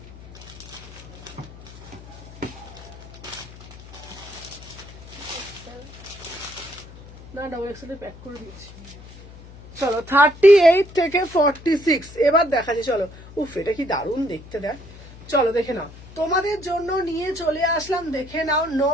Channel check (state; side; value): noise; left; hum, 18 dB below the sound